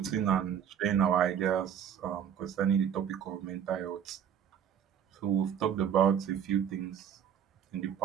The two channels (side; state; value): left; quieter; 8.8 dB